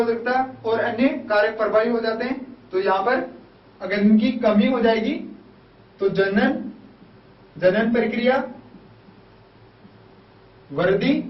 और अन्य कारक प्रभावी हो जाते हैं। तो यहाँ पर अगर इनकी कमी हो जाएगी तो जनन प्रक्रिया, वृद्धि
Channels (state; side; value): identical; both; correlation 1.00